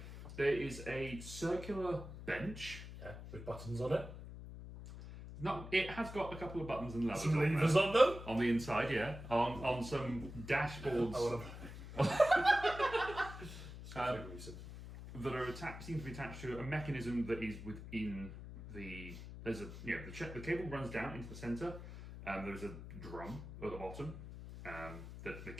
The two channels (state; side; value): noise; left; hum, 11 dB below the sound